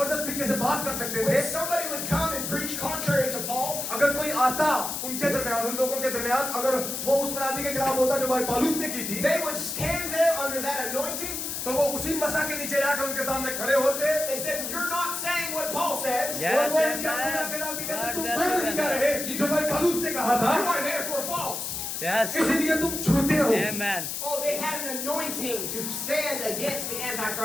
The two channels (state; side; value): noise; left; hiss, 4 dB below the sound